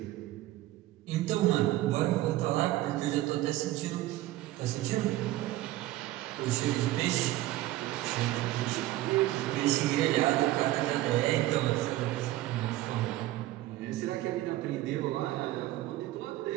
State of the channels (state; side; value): quieter; left; 15.9 dB